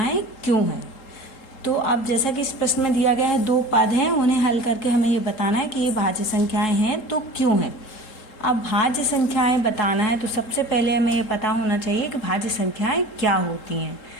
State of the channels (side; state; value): right; late; 3.7 ms